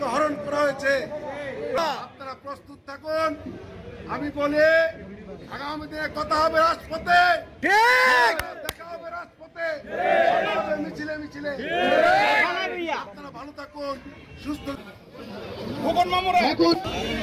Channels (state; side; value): identical; both; correlation 1.00